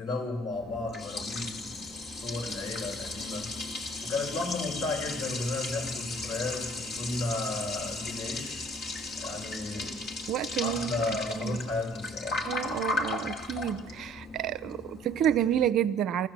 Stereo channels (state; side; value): normal; both; correlation 0.55